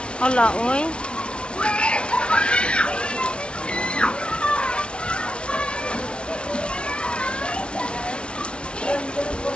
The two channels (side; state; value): right; late; 0.058 ms